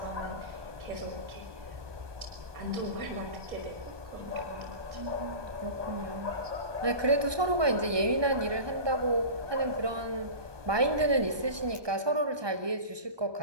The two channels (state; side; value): late; left; 1.2 ms